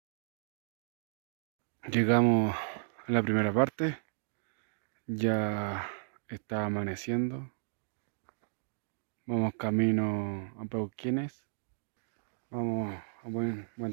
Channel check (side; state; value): left; silent; digital silence